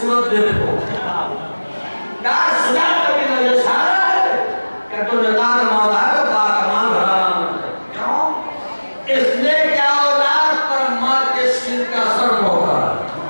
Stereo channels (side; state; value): both; inverted; correlation -1.00